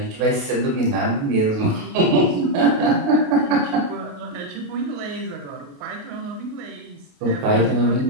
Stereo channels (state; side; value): late; left; 28 ms